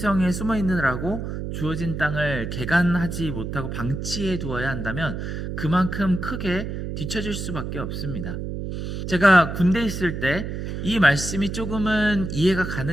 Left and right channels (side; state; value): right; noise; hum, 5 dB below the sound